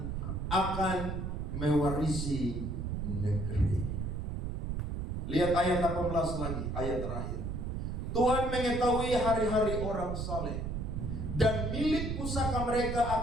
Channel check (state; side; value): noise; right; rumble, 3 dB below the sound